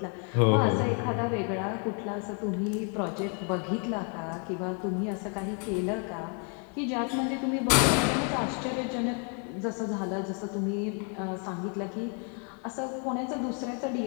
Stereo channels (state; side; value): quieter; right; 39.5 dB